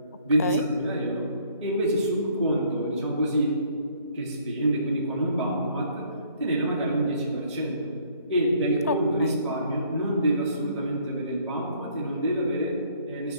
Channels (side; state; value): both; inverted; correlation -0.62